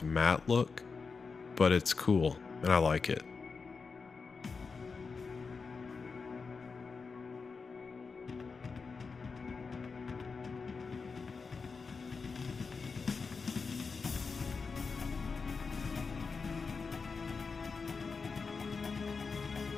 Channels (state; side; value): quieter; right; 4.8 dB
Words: matte look, but it's cool and I like it.